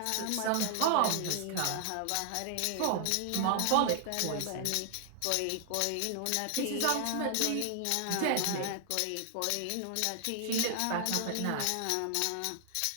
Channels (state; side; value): different; both; correlation 0.00